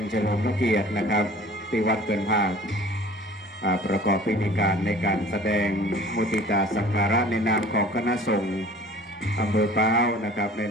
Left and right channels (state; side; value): normal; both; correlation 0.47